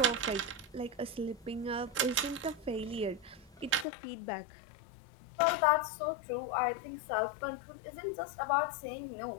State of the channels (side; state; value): right; drops out; at 3.9 s